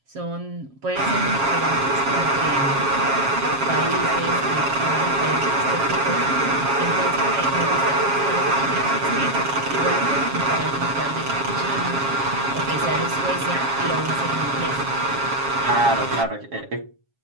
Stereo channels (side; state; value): left; late; 7.3 ms